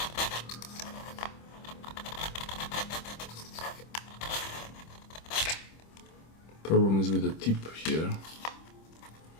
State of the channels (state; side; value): late; right; 25 ms